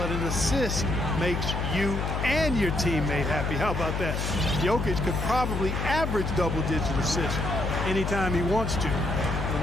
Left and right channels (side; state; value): left; noise; hum, 2 dB below the sound